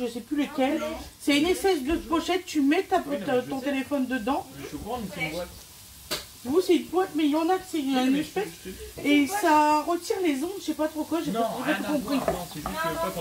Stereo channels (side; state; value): both; identical; correlation 1.00